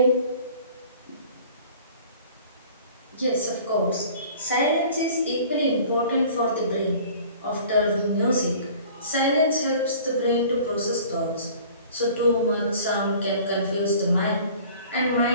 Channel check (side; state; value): both; inverted; correlation -0.48